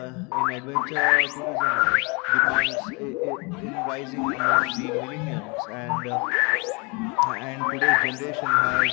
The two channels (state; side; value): quieter; right; 29.9 dB